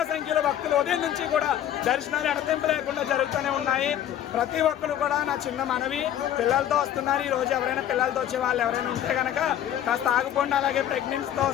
సంఖ్యలో భక్తులు ఉదయం నుంచి కూడా దర్శనాలు ఎడతెంపు లేకుండా జరుగుతూనే ఉన్నాయి. ప్రతి ఒక్కరు కూడా నా చిన్న మనవి, పిల్లలతో వస్తున్నారు. ఈ రోజు ఎవరైనా పిల్లలతో వచ్చే వాళ్ళు ఎవరైనా ఉంటే కనుక కాస్త ఆగిపోండి. అలాగే ప్రెగ్నెన్సీతో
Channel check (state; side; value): quieter; right; 10.9 dB